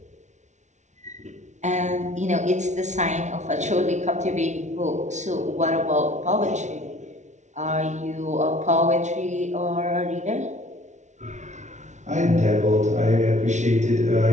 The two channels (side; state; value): left; late; 0.34 ms